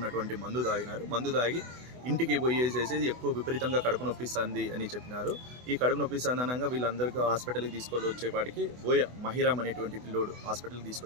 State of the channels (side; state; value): left; late; 24 ms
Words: మందు తాగి ఇంటికి పోయేసేసి ఎక్కువ విపరీతంగా కడుపు నొప్పిస్తుంది అని చెప్పినారు. ఈ కడుపు నొప్పిస్తుంది అనగా వీళ్ళందరికీ హాస్పిటల్కి తీసుకొని వచ్చేపాటికి మహిరామ్ అనేటువంటి పిల్లోడు హాస్పిటల్కి